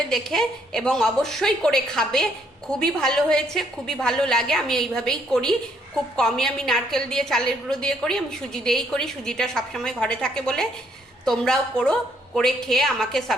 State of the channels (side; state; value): both; normal; correlation 0.69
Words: দেখে, এবং অবশ্যই করে খাবে। খুবই ভালো হয়েছে, খুবই ভালো লাগে। আমি এইভাবেই করি, খুব কমই আমি নারকেল দিয়ে, চালের গুঁড়ো দিয়ে করি, আমি সুজি দিয়েই করি, সুজিটা সবসময় ঘরে থাকে বলে। তোমরাও করো, করে খেয়ে আমাকে